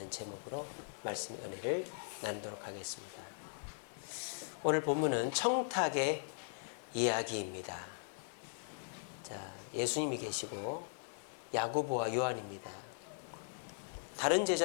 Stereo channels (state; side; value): silent; right; digital silence